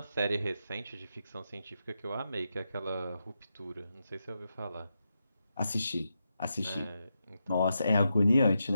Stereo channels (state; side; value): inverted; both; correlation -0.87